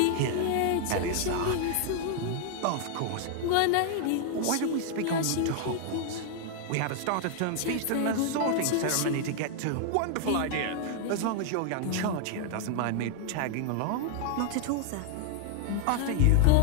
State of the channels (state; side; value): different; both; correlation 0.00